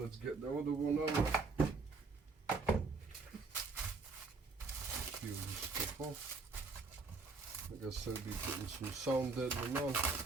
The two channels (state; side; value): quieter; left; 4.1 dB